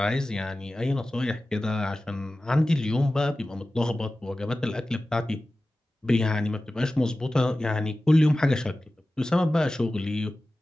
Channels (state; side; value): normal; both; correlation 0.96